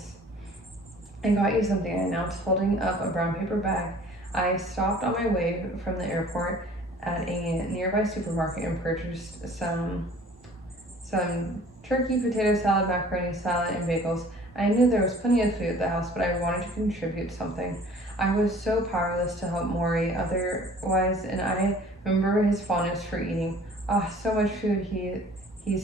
"I got you something," I announced, holding up a brown paper bag I stopped on my way from the airport at a nearby supermarket and purchased some turkey, potato salad, macaroni salad, and bagels. I knew there was plenty of food at the house, but I wanted to contribute something. I was so powerless to help Morrie otherwise, and I remember his fondness for eating. Ah, so much food,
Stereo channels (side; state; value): both; normal; correlation 0.50